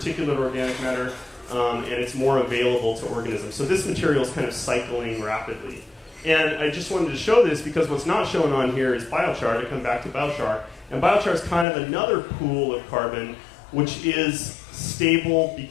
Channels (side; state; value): right; drops out; at 11.7 s